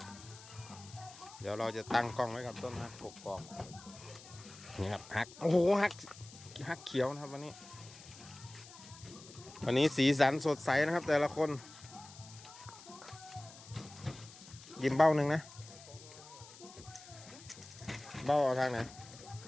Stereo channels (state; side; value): noise; left; hiss, 18 dB below the sound